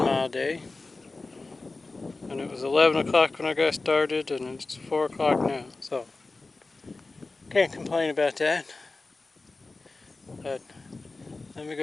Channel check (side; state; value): right; quieter; 3.5 dB